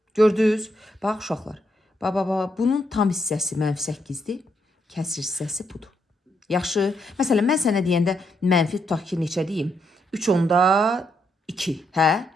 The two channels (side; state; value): both; normal; correlation 0.78